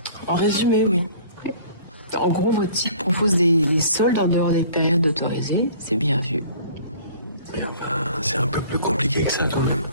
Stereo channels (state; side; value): inverted; both; correlation -0.50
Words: En résumé, oui. En gros, votre site propose des soldes en dehors des périodes autorisées. C'est bien vu. Ben, c'est un peu plus compliqué que ça, quand même.